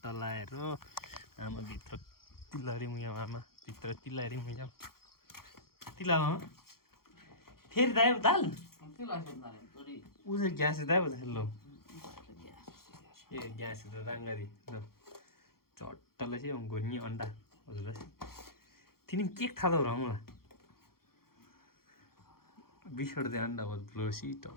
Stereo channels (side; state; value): right; late; 0.93 ms